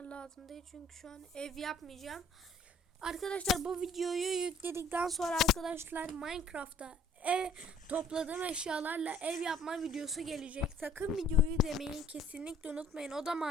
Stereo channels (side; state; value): both; normal; correlation 0.56